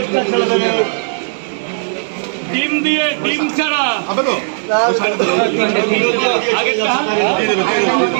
ডিম দিয়ে, ডিম ছাড়া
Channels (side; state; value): left; silent; 69 dB below the other